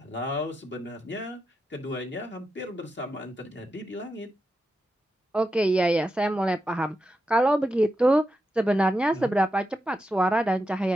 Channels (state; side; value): normal; both; correlation 0.88